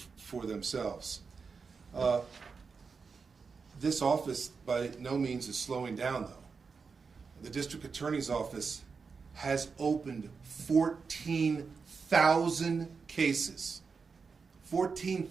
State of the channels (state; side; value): quieter; left; 5.1 dB